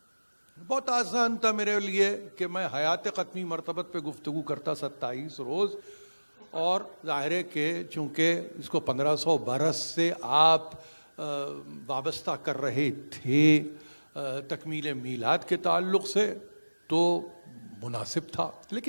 بہت آسان تھا میرے لیے کہ میں حیات قطمی مرتبت پہ گفتگو کرتا 27 روز، اور ظاہر ہے کہ چونکہ اس کو 1500 برس سے آپ وابستہ کر رہے تھے تکمیل میلاد کے تعلق سے، تو مناسب تھا.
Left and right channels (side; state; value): both; inverted; correlation -1.00